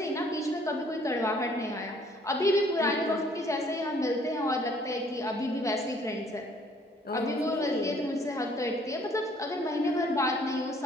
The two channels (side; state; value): both; normal; correlation 0.60